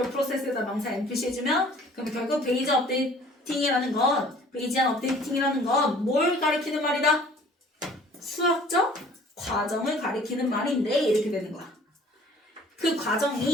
process에다 명사 NPC 해주면 그럼 결국 베이전 업데이팅이라는 건 베이지안 업데이팅이라는 건 뭘 가리키는 말이다? 수학적 과정을 가리키는 말인데 이렇게 되는 거야. 그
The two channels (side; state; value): both; normal; correlation 0.52